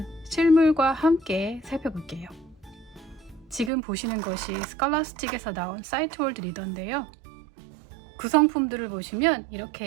실물과 함께 살펴볼게요. 지금 보시는 것이 스칼라스틱에서 나온 사이트월드 리더인데요. 구성품들을 보시면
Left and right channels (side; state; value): left; drops out; at 3.7 s